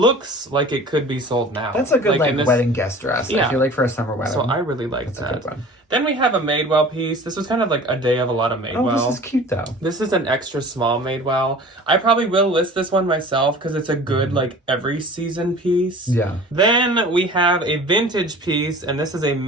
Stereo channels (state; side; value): normal; both; correlation 0.43